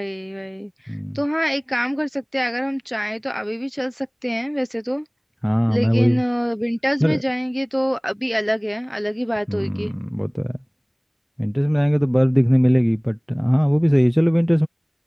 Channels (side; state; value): both; identical; correlation 1.00